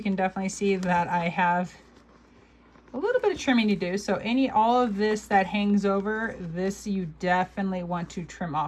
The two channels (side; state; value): both; identical; correlation 1.00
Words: can definitely see that I have a little bit of trimming to do. So all of this that hangs over, this you definitely want to trim